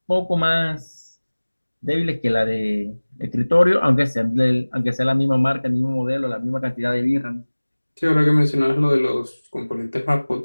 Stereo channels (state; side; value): inverted; both; correlation -1.00